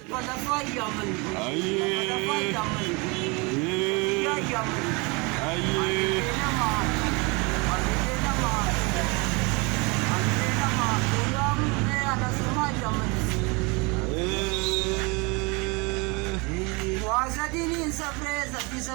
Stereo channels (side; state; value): left; quieter; 28.5 dB